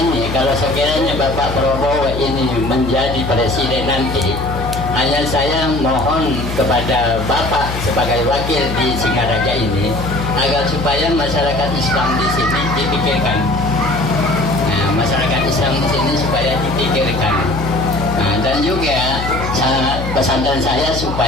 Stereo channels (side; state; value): left; noise; hum, 6 dB below the sound